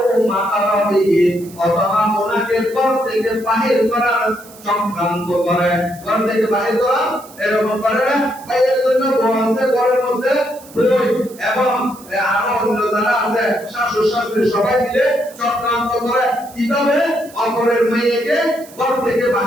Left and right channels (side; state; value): right; noise; hiss, 21 dB below the sound